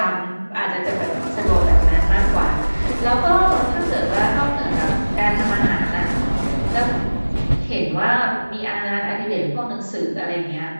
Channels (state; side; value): inverted; both; correlation -1.00